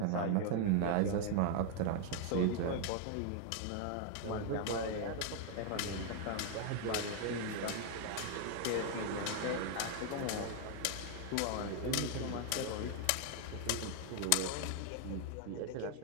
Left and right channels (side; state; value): both; different; correlation 0.00